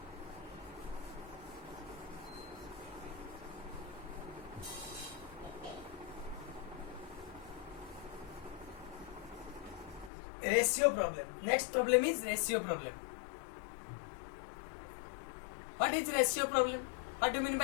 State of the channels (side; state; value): right; drops out; at 10.1 s